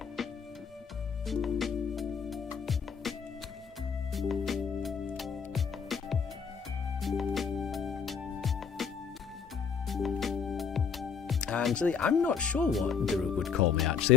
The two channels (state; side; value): quieter; right; 6.4 dB